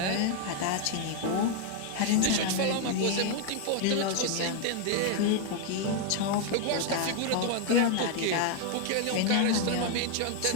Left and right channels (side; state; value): both; different; correlation 0.00